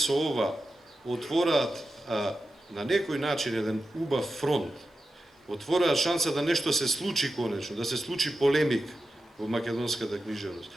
ова отвораат на некој начин еден убав фронт отвораа шанса да нешто се случи конечно, да се случи полемик во македонската книжевност,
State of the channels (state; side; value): normal; both; correlation 0.92